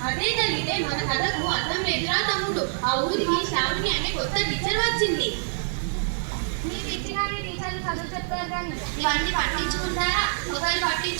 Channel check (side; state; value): left; silent; digital silence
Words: అదే జరిగితే మన కథకు అర్థం లేదురా తమ్ముడు. ఆ ఊరికి శ్రావణి అనే కొత్త టీచర్ వచ్చింది. చదువు చెప్తారు కానీ ఇవన్నీ పట్టించుకుంటారా? ఒకరు